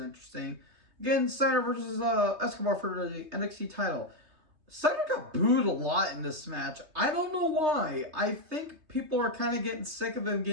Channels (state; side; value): late; left; 3.2 ms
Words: Again, Steiner versus Escobar for the NXT title. Steiner got booed a lot in this match. I don't know why. I think people are kind of getting sick of him